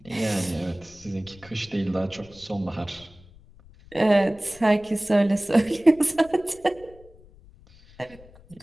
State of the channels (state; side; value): noise; left; rumble, 24 dB below the sound